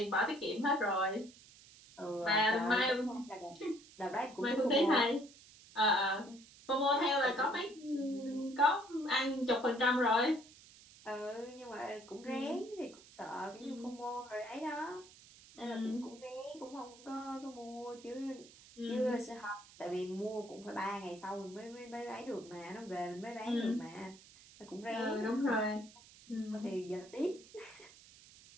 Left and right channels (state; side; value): noise; right; hiss, 21 dB below the sound